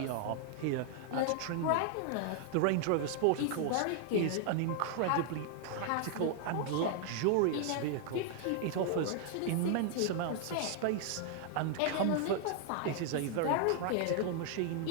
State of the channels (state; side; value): different; both; correlation 0.00